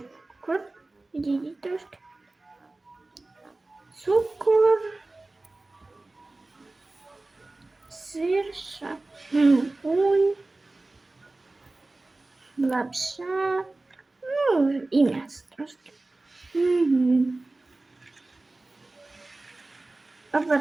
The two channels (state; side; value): quieter; left; 3.0 dB